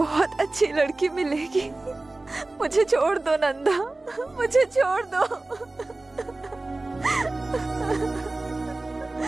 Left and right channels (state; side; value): quieter; left; 3.0 dB